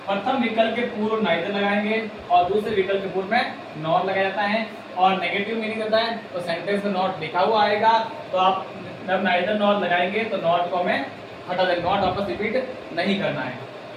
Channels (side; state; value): both; identical; correlation 1.00